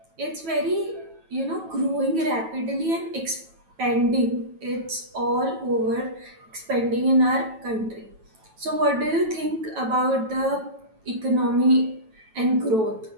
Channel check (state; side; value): late; left; 9.2 ms